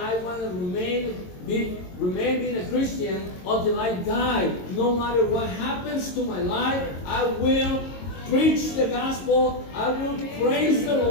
want to remain being a Christian until I die. No matter what happens to my life, I will preach the gospel. I will praise the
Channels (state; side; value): late; right; 22 ms